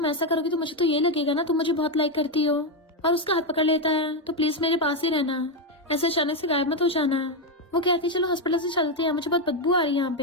ऐसा करोगी तो मुझे तो ये लगेगा ना तुम मुझे बहुत लाइक करती हो, और उसका हाथ पकड़ लेता है तो प्लीज मेरे पास ही रहना, ऐसे अचानक से गायब मत हो जाना। वो कहती है चलो हॉस्पिटल से चलते हैं, मुझे बहुत बदबू आ रही है यहाँ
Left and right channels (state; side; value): normal; both; correlation 0.06